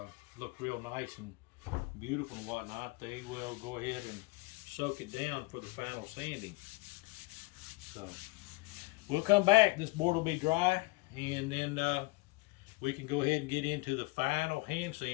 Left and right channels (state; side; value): quieter; right; 24.1 dB